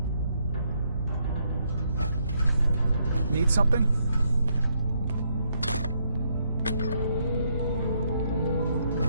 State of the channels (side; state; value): both; inverted; correlation -0.75